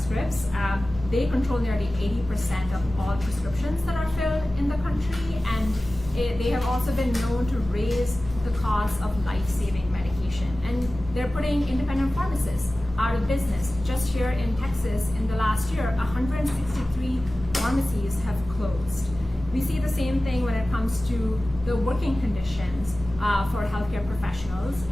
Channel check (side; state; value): both; normal; correlation 0.96